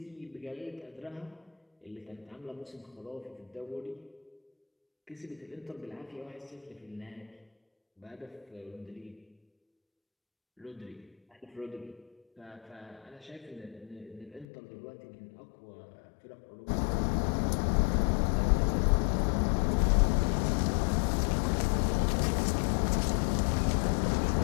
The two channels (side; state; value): right; drops out; at 14.5 s